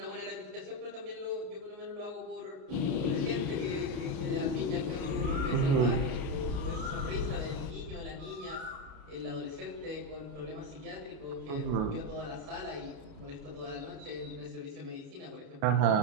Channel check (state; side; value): late; left; 37 ms